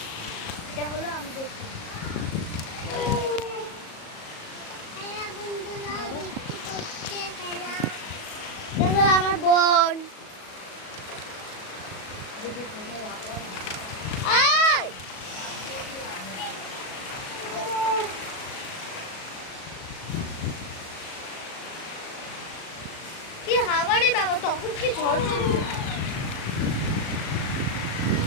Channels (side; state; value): right; late; 37 ms